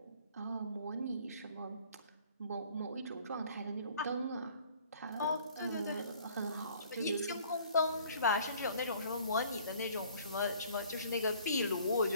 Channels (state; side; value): inverted; both; correlation -0.55